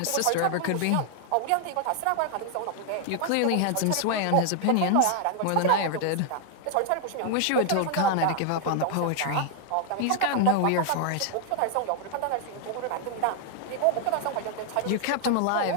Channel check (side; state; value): both; different; correlation 0.00